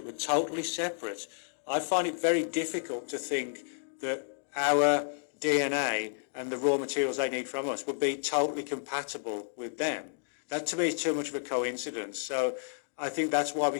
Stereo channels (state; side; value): silent; right; digital silence